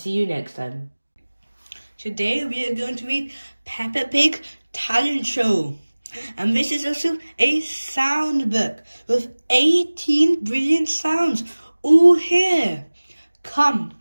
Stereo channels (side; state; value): both; inverted; correlation -1.00